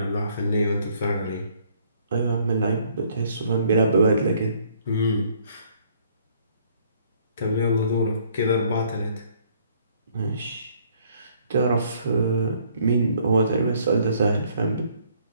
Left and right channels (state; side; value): inverted; both; correlation -0.63